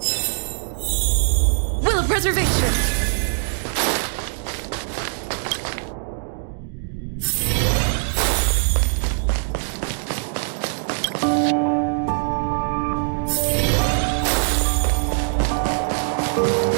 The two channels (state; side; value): silent; left; digital silence